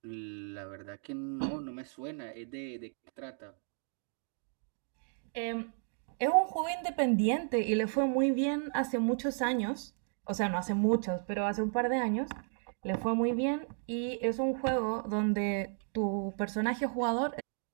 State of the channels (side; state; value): left; silent; 55 dB below the other